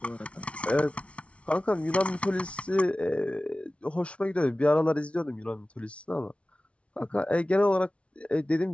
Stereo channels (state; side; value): late; right; 0.061 ms